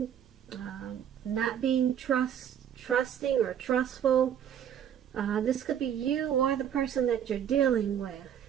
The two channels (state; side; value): quieter; left; 9.3 dB